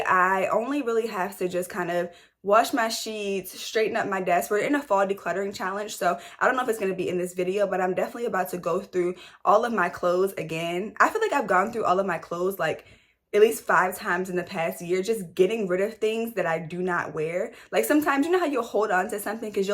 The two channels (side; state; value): both; identical; correlation 1.00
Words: I only really have to just kind of wash my sheets, straighten up my desk. We're in a fall decluttering challenge, so I don't know if it's going to be in this video, but I'm definitely about to go through all of my clothes again. I feel like I've gone through all of my clothes like at least 5 times in the past year, just getting rid of things that I do not wear. Like, sometimes, you know how you'll hold on to something because